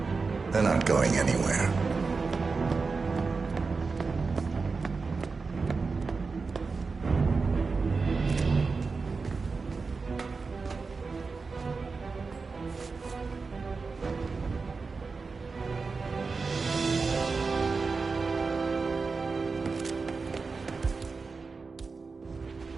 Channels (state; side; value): quieter; left; 4.4 dB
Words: They're not going anywhere.